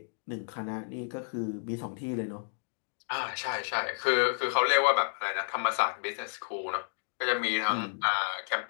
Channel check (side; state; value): right; silent; digital silence